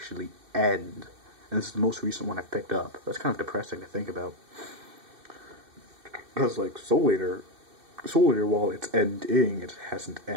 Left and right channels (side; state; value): left; late; 2.6 ms